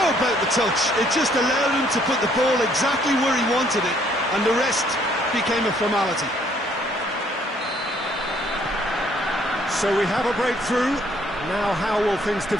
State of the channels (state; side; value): normal; both; correlation 0.64